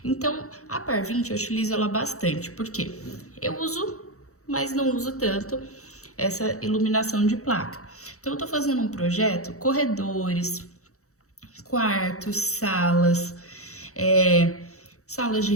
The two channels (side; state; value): right; late; 0.65 ms